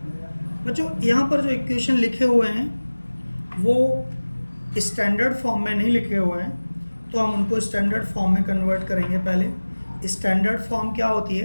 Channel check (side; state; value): both; inverted; correlation -1.00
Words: बच्चों यहाँ पर जो इक्वेशन लिखे हुए हैं वो स्टैंडर्ड फॉर्म में नहीं लिखे हुए हैं, तो हम उनको स्टैंडर्ड फॉर्म में कन्वर्ट करेंगे। पहले स्टैंडर्ड फॉर्म क्या होती